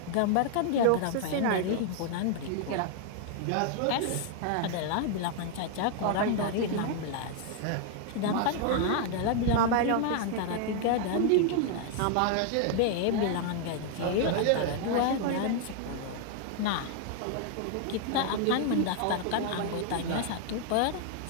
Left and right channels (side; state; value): both; different; correlation 0.00